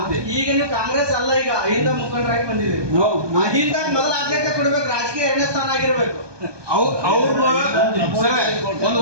ಈಗ ನೀವು ಕಾಂಗ್ರೆಸ್ ಅಲ್ಲ, ಈಗ ಅಹಿಂದ ಮುಖಂಡರಾಗಿ ಬಂದಿದ್ದೀರಿ. ಅಹಿಂದ ಮೊದಲ ಆದ್ಯತೆ ಕೊಡ್ಬೇಕು, ರಾಜಕೀಯ 2ನೇ ಸ್ಥಾನ ಆಗಿರ್ಬೇಕು.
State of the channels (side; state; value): left; late; 1.2 ms